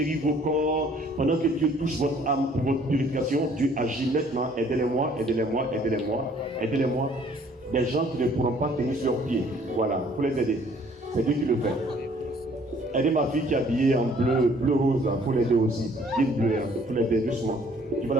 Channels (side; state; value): both; normal; correlation 0.58